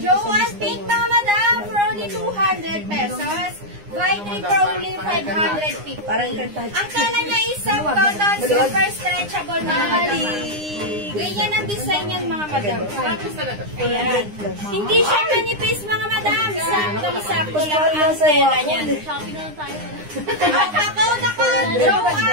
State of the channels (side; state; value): left; late; 9.8 ms